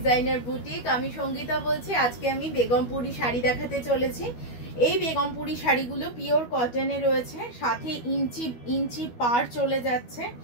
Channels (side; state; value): right; late; 12 ms